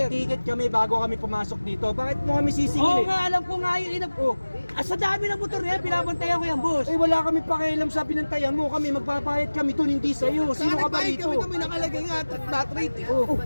May ticket kami bago kami pumasok dito. Bakit mo kami sisingil? Oo nga, alam ko nga yun. Sa dami ng motor niya, binabantayan ko yan, boss. Eh, wala kami pakialam sa binantayan mo. Kami, magbabayad kami doon, hindi sa'yo. Sino ka ba rito? Kami nakalagay nga flat rate eh. Oh,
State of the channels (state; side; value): inverted; both; correlation -1.00